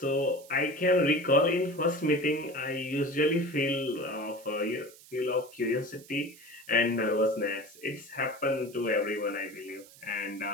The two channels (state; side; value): noise; right; hiss, 22 dB below the sound